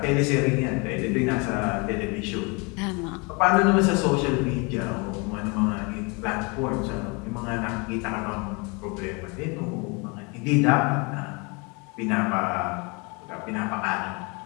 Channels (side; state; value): right; quieter; 30.1 dB